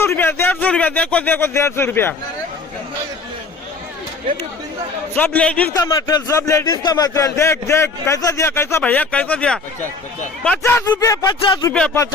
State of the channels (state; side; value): quieter; right; 4.0 dB